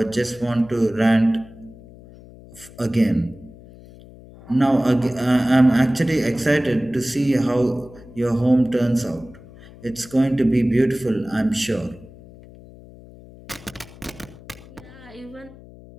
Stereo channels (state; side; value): noise; left; hum, 20 dB below the sound